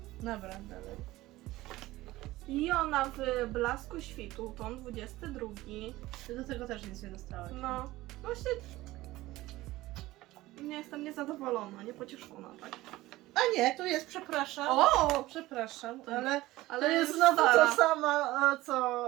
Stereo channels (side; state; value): left; quieter; 17.7 dB